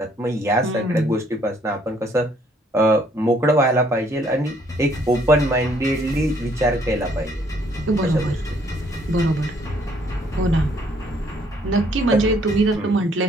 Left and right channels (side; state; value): both; normal; correlation 0.65